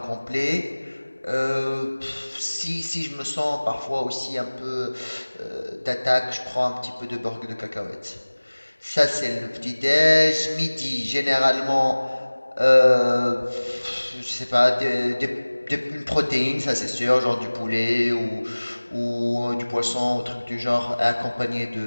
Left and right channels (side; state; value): both; inverted; correlation -1.00